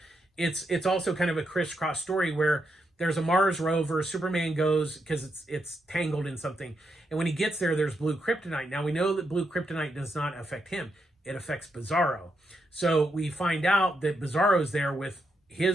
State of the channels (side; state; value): both; normal; correlation 0.82